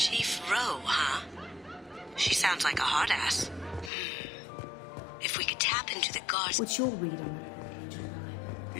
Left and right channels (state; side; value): drops out; right; at 3.9 s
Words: Rowe, huh? She sounds like a hard ass. If we could tap into the guards... What's your read on it?